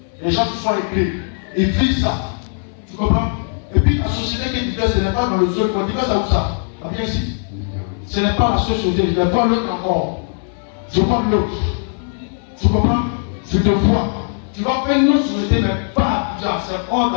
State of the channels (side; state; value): right; silent; 67 dB below the other